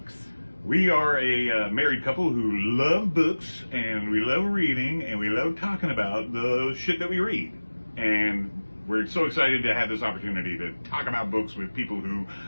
We are a married couple who love books, and we love reading, and we love talking about the shit that we read. And we're so excited to have this opportunity to talk about books with people who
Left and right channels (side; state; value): both; inverted; correlation -1.00